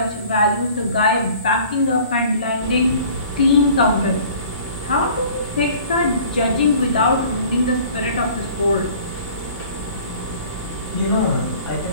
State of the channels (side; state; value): both; inverted; correlation -0.49